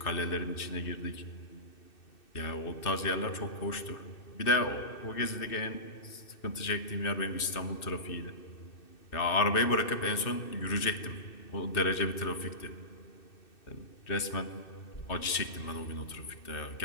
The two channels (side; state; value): right; late; 2.6 ms